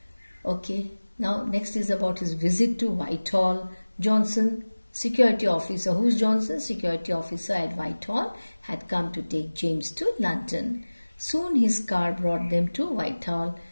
Okay. Now, next is about his visit to Whitehall. Johnson, security officer. Who's Johnson? Security officer at Whitehall had come to take James to London. Soon his car brought them to Whitehall.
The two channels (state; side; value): inverted; both; correlation -1.00